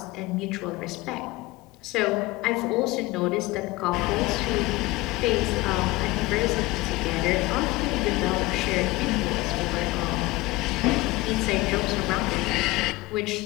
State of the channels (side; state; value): right; quieter; 20.6 dB